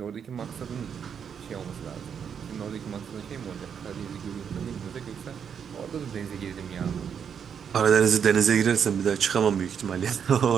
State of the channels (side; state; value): left; quieter; 7.5 dB